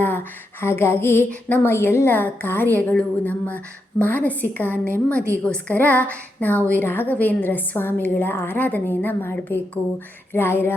ಹಾಗಾಗಿ ನಮ್ಮ ಎಲ್ಲ ಕಾರ್ಯಗಳು, ನಮ್ಮ ಮಾನಸಿಕ ನೆಮ್ಮದಿಗೋಸ್ಕರ ನಾವು ಈ ರಾಘವೇಂದ್ರ ಸ್ವಾಮಿಗಳ ಆರಾಧನೆಯನ್ನು ಮಾಡಬೇಕು. ರಾಯರ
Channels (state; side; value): normal; both; correlation 0.84